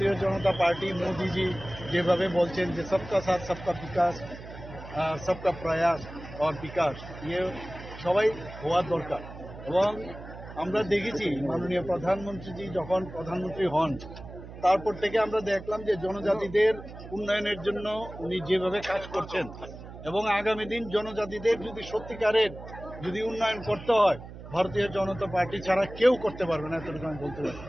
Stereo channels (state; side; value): noise; right; hum, 14 dB below the sound